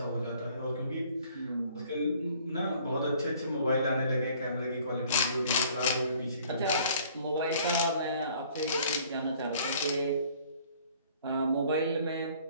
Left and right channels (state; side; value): inverted; both; correlation -0.56